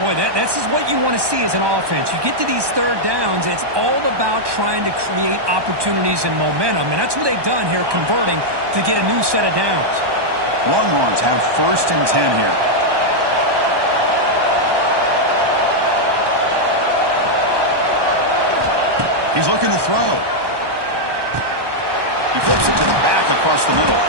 this is what you want to see as an offense. You get to these third downs, it's all about trying to create opportunities and momentum, and that's what they've done here, converting to get a new set of downs. Longhorns have 1st and 10 here. He's looking to throw. He flips it to the back across the middle.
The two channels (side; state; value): left; late; 1.2 ms